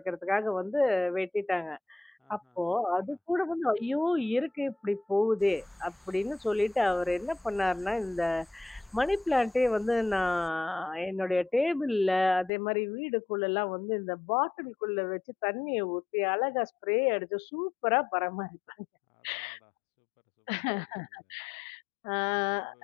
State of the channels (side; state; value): right; drops out; at 12.5 s